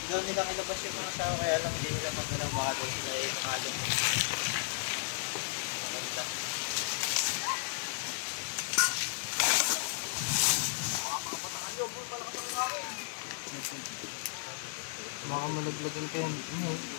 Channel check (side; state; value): right; silent; digital silence